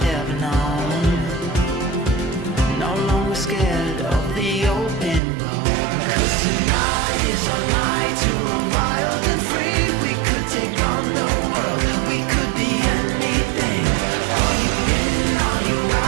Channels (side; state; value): left; drops out; at 5.2 s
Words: ever known. No longer scared of the open road. 'Cause tonight is our night to run wild and free. We could take on the world, we could be anything. Are you in, are you